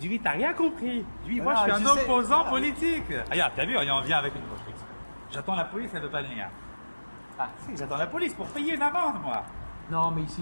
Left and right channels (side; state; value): both; inverted; correlation -1.00